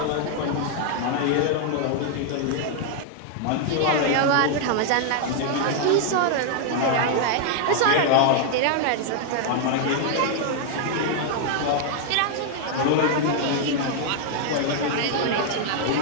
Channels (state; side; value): different; both; correlation 0.00